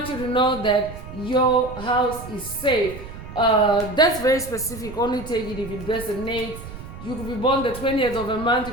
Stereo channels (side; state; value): right; noise; rumble, 12 dB below the sound